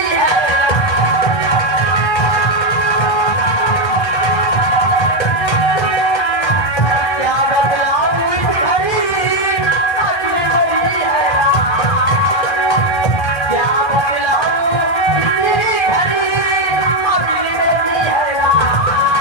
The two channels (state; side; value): late; right; 1.2 ms